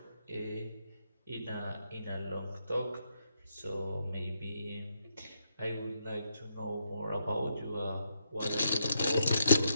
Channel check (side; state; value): both; inverted; correlation -0.78